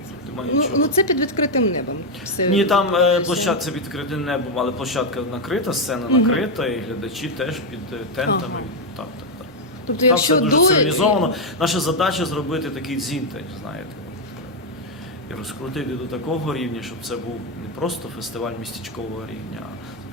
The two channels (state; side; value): normal; both; correlation 0.03